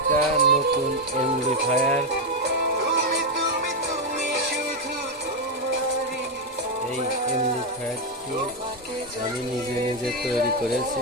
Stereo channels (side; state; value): both; normal; correlation 0.04